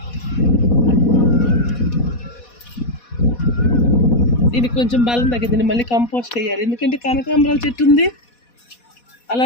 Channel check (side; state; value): right; late; 4.1 ms